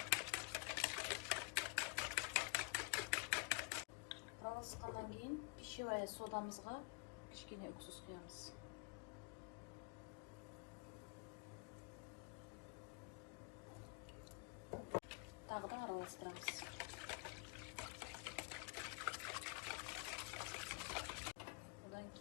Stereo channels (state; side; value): quieter; right; 34.8 dB